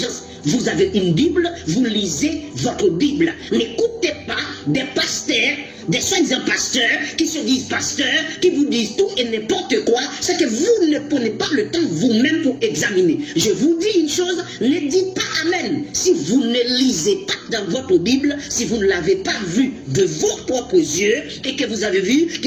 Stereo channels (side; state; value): both; identical; correlation 1.00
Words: Vous avez une Bible, vous lisez votre Bible. N'écoutez pas des pasteurs des soi-disant pasteurs qui se disent pasteurs, qui vous disent tout et n'importe quoi, c'est que vous ne prenez pas le temps vous-même pour examiner. Je vous dis une chose, ne dites pas amen si vous ne lisez pas dans votre Bible, si vous ne l'avez pas vu de vos propres yeux et que vous avez vu